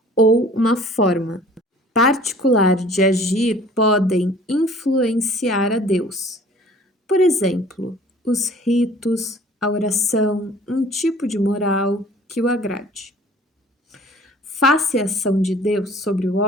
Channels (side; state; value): both; normal; correlation 0.50